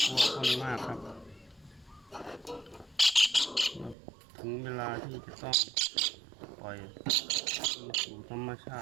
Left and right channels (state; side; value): drops out; left; at 4.0 s